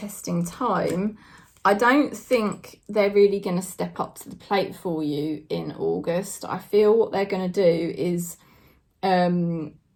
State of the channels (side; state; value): both; identical; correlation 1.00